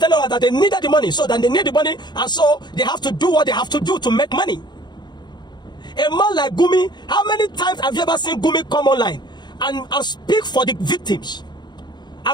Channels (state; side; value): late; right; 0.21 ms